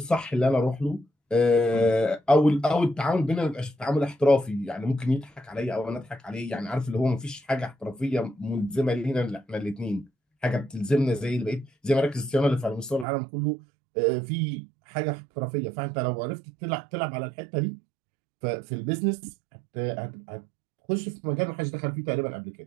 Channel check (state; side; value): drops out; left; at 13.1 s